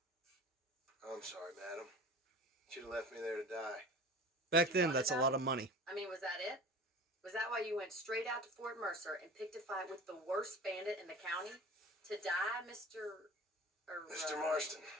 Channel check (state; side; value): normal; both; correlation 0.38